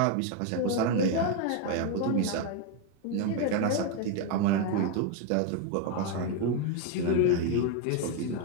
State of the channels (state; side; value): different; both; correlation 0.01